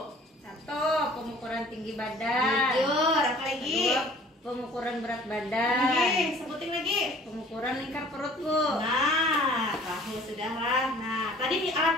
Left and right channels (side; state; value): both; normal; correlation 0.51